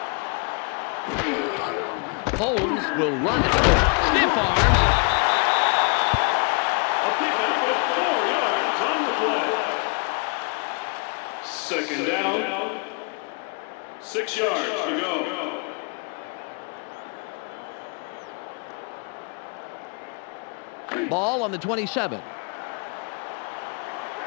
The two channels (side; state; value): right; quieter; 36.0 dB